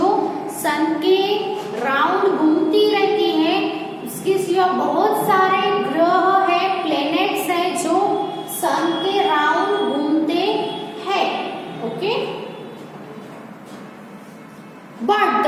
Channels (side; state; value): both; identical; correlation 1.00